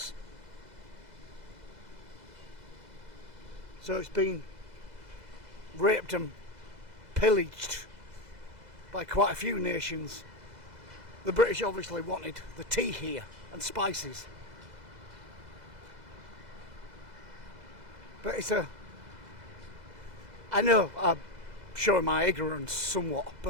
So it's been raped and pillaged by quite a few nations. The British obviously wanted the tea here and spices. But I know I'm showing my ignorance somewhat,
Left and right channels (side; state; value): left; late; 2.0 ms